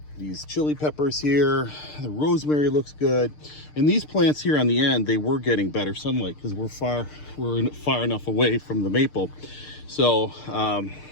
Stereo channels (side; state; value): right; late; 6.6 ms